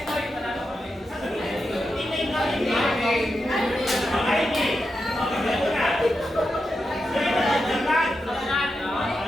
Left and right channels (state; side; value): normal; both; correlation 0.88